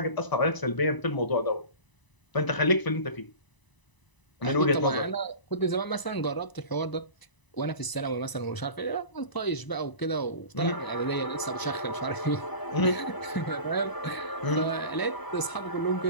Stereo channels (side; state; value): right; late; 1.0 ms